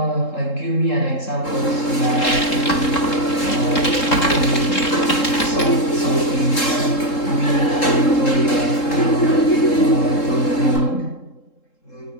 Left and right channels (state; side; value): late; right; 3.7 ms